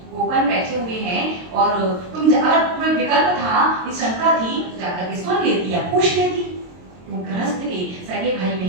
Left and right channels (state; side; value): late; left; 22 ms